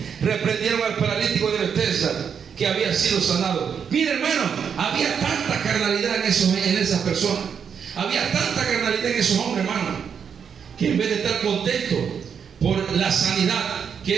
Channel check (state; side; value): quieter; left; 7.1 dB